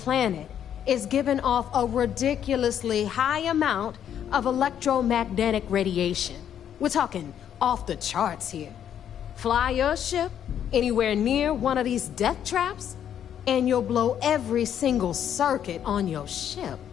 is giving off a ridiculously high amount of electromagnetic radiation. We're talking off the charts here. Fly your ship anywhere near one of these death traps, and you'll blow every single circuit on your ship.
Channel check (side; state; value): right; quieter; 9.5 dB